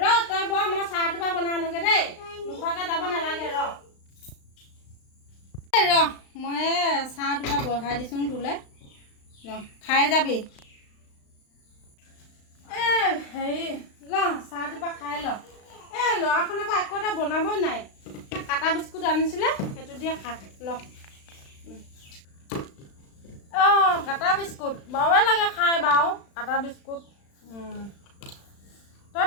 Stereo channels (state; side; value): late; right; 35 ms